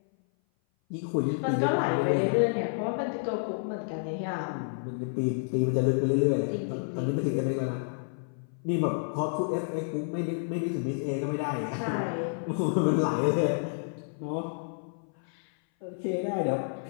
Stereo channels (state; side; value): silent; right; 56 dB below the other